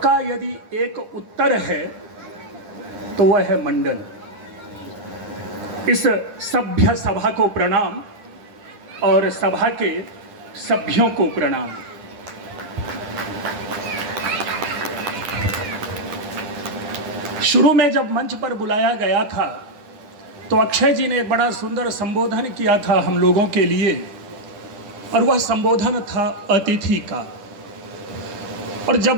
यदि एक उत्तर है तो वह है मंडन। इस सभ्य सभा को प्रणाम और सभा के सभ्यों को प्रणाम। शुरू में जब मंच पर बुलाया गया था तो अक्षय जी ने एक बड़ा सुंदर संबोधन किया था हम लोगों के लिए, और वह संबोधन था अतिथि का। और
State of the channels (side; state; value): left; late; 10 ms